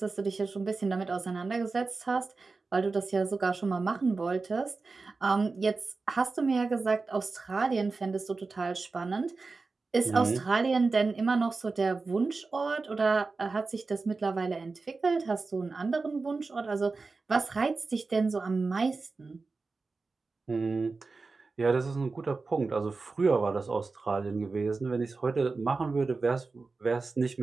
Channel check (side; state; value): left; quieter; 4.0 dB